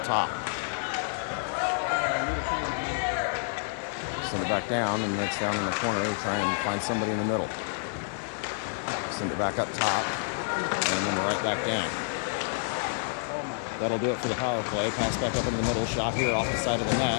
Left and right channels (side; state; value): right; silent; digital silence